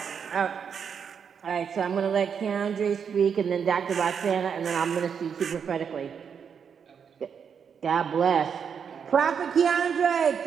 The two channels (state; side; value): quieter; left; 7.0 dB